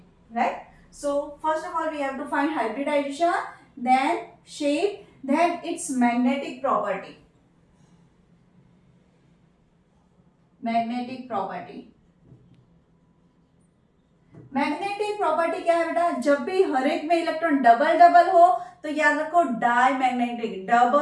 right? So first of all we have to find hybridization, then shape, then its magnetic property. Magnetic property. Magnetic property क्या है बेटा? जब भी हर एक में इलेक्ट्रॉन डबल डबल हो तो याद रखो diamagnetic.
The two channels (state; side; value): identical; both; correlation 1.00